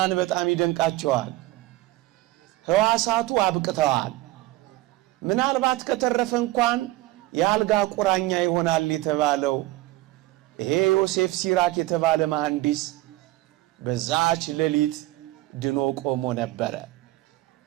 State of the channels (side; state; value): left; quieter; 18.1 dB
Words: በጣም ይደንቃቸዋል። ሕዋሳቱ አብቅተዋል። ምናልባት ከተረፈ እንኳን የአልጋ ቁራኛ ይሆናል የተባለው ይሄ ዮሴፍ ሲራክ የተባለ መሐንዲስ በዛች ሌሊት ድኖ ቆሞ ነበረ።